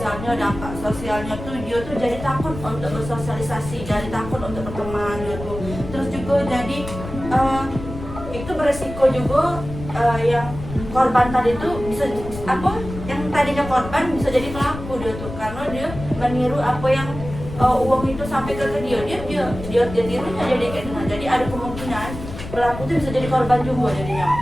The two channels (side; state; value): left; noise; rumble, 10 dB below the sound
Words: dampak sosialnya tuh dia tuh jadi takut untuk bersosialisasi, jadi takut untuk berteman gitu. Terus juga jadi itu beresiko juga yang korban tadi tuh bisa yang tadinya korban bisa jadi pelaku dia tuh, karena dia meniru apa yang uang itu sampai ke dia tirunya jadi kayak gitu. Jadi ada kemungkinan pelaku itu bisa jadi korban juga jadinya.